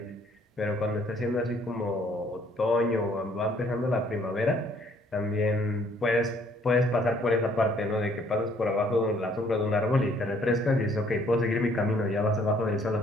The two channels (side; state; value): both; normal; correlation 0.63